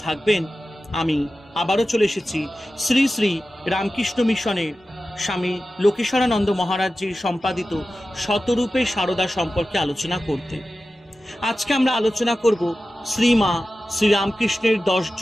থাকবেন। আমি আবারও চলে এসেছি শ্রী শ্রী রামকৃষ্ণ মিশনের স্বামী লোকেশ্বরানন্দ মহারাজজির সম্পাদিত শতরূপে সারদা সম্পর্কে আলোচনা করতে। আজকে আমরা আলোচনা করব শ্রীমা শ্রীরামকৃষ্ণের 10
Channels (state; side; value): normal; both; correlation 0.94